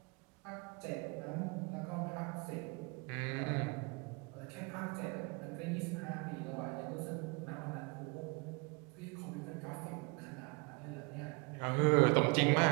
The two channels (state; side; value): quieter; left; 29.7 dB